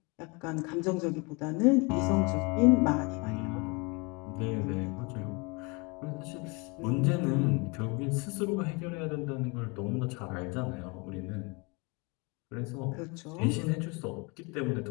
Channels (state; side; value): quieter; right; 28.6 dB